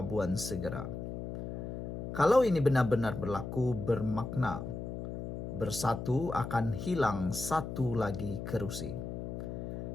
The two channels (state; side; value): noise; left; hum, 6 dB below the sound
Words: segera. Kalau ini benar-benar berlaku, bermakna bersatu akan hilang satu lagi kerusi.